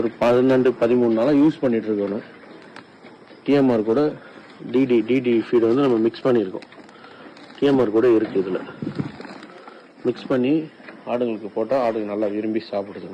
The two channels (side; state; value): both; identical; correlation 1.00